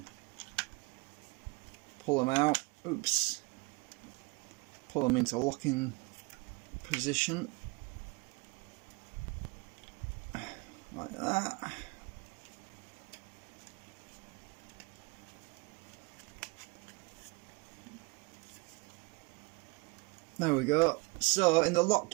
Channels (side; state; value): left; quieter; 27.8 dB